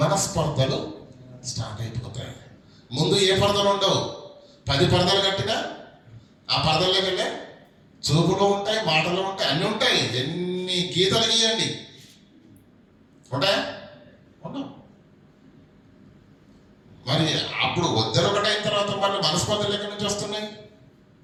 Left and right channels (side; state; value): both; identical; correlation 1.00